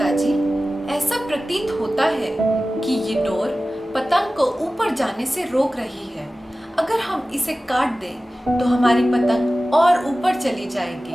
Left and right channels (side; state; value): both; normal; correlation 0.96